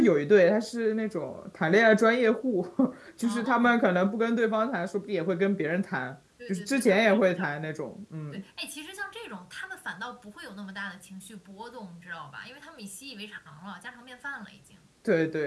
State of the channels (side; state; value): both; identical; correlation 1.00